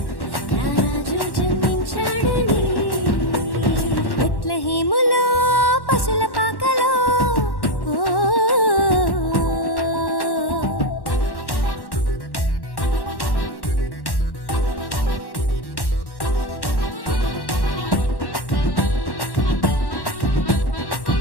రారాజు జన్మించాడని బెత్లెహేములో పశుల పాకలో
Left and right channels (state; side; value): late; right; 1.1 ms